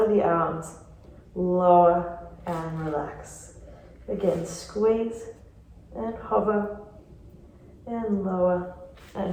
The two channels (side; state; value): both; identical; correlation 1.00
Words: the arms, lower and relax. Again, squeeze and hover and lower